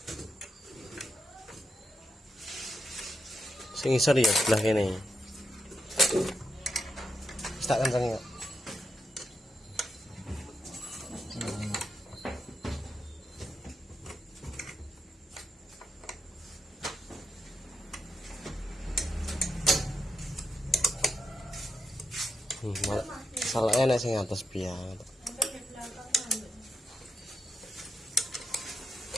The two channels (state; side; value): normal; both; correlation 0.84